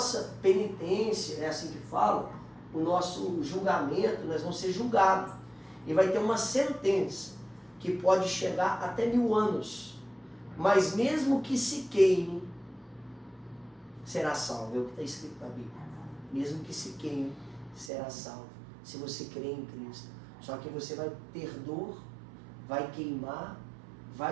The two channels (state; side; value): drops out; left; at 17.9 s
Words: penitência, é assim que fala, o nosso julgamento, nós vamos ser julgados. E vai ter uma sentença que pode chegar até 1000 anos. Mas mesmo que se queime, será salvo. É o que está escrito na Bíblia. Mesmo que se queime, será salvo. Se você crê em Cristo. Só que você vai ter dor, vai queimar,